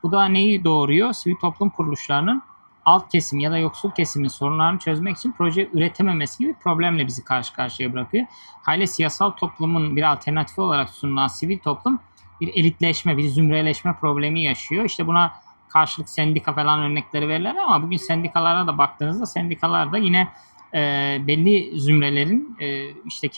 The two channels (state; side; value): inverted; both; correlation -1.00